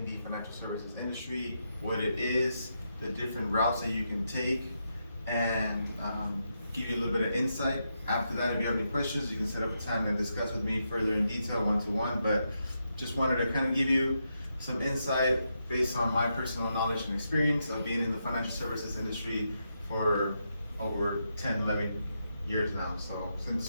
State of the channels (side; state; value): both; inverted; correlation -0.83